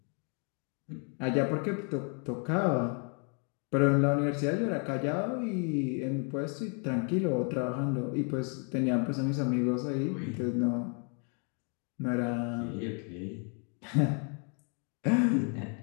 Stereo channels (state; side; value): quieter; right; 39.6 dB